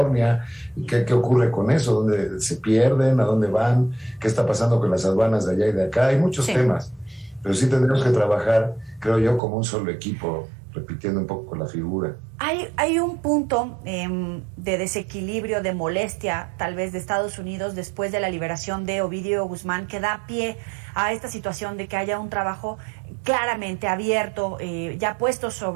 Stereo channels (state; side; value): drops out; left; at 9.4 s